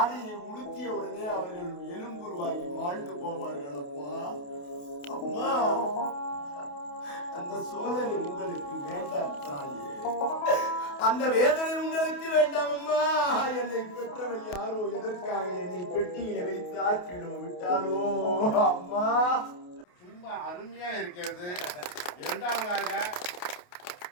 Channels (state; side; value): late; right; 28 ms